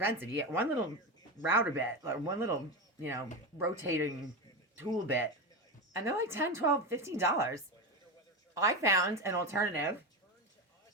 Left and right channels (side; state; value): both; normal; correlation 0.18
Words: You get one little router bit, or one little, rotating tool bit, and they're like $10, $12, $15. I found an alternative,